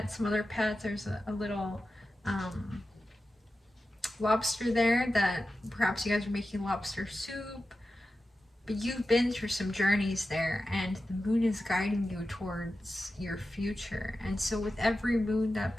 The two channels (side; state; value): both; normal; correlation 0.92